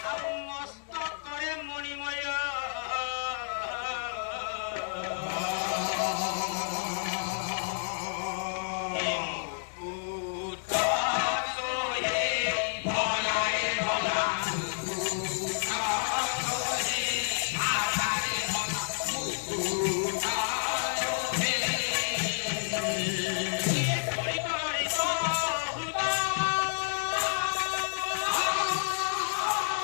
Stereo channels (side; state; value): right; silent; digital silence